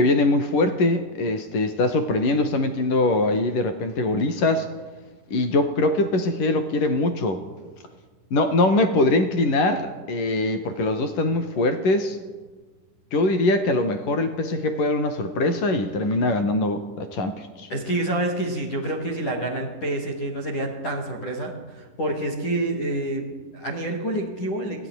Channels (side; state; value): right; late; 10 ms